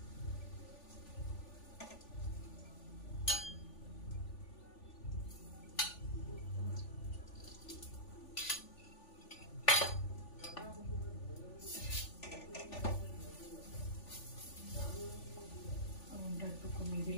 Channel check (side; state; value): right; late; 3.4 ms